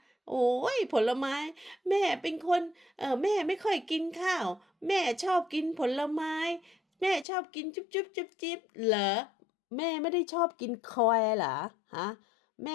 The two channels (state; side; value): drops out; right; at 7.2 s